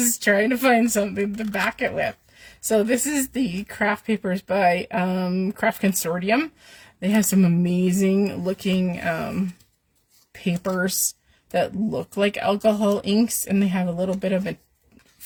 trying to find something to back it with. So this is the craft papers by Craft Consortium. They have some amazing looking papers that look like alcohol inks, and they have a little bit of a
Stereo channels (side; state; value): both; identical; correlation 1.00